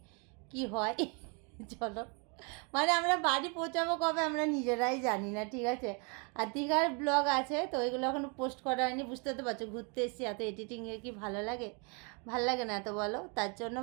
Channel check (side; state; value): left; quieter; 35.2 dB